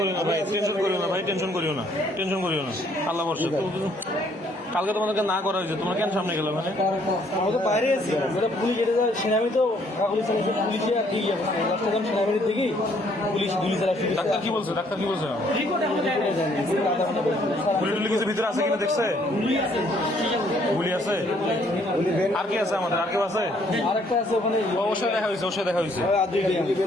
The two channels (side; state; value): both; normal; correlation 0.65